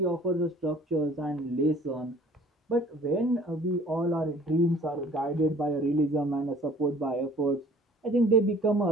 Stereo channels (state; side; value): normal; both; correlation 0.52